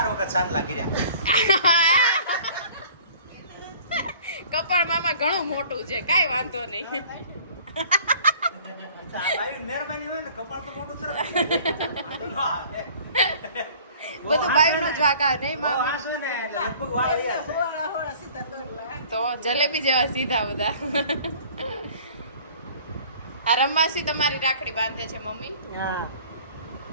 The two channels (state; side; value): inverted; both; correlation -0.50